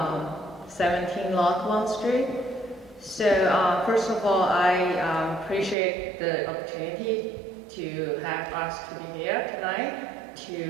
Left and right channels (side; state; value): left; drops out; at 5.8 s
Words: 17 Lockwood Street. So first of all, I appreciate the opportunity to have us to be here tonight